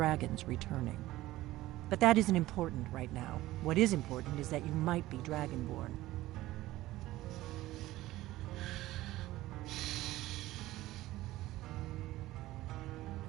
returning. But that isn't important right now. What is important is that you might be Dragonborn.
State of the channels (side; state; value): left; quieter; 16.6 dB